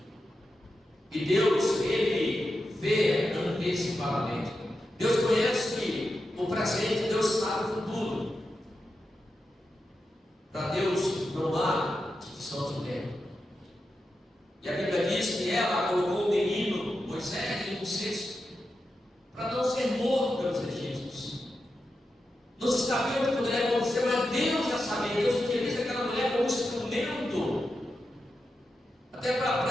E Deus, Ele vê antecipadamente. Deus conhece o presente, Deus sabe o futuro. Para Deus não há distinção de tempo. E a Bíblia diz que ela colocou o menino Moisés em um cesto para não ser morto pelos egípcios. Não se sabia o que poderia acontecer, mas Deus já sabia. Deus utiliza aquela mulher como instrumento, até para a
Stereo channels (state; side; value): normal; both; correlation 0.89